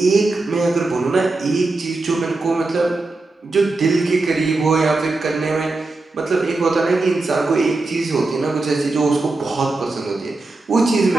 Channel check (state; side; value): quieter; left; 3.3 dB